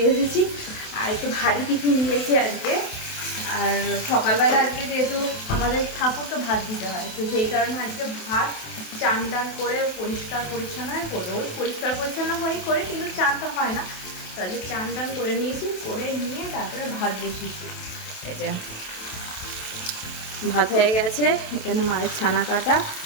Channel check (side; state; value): right; late; 28 ms